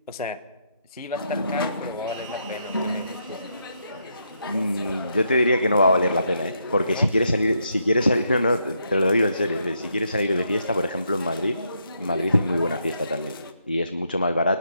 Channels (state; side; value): inverted; both; correlation -0.78